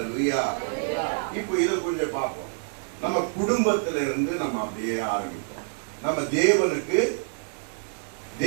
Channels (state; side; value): silent; left; 60 dB below the other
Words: இப்போ இதை கொஞ்சம் பார்ப்போம். நம்ம குடும்பத்தில இருந்து நம்ம அப்படியே ஆரம்பிப்போம். நம்ம